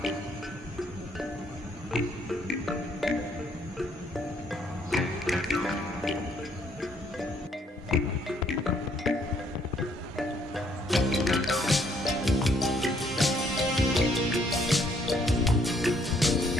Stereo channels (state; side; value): normal; both; correlation 0.67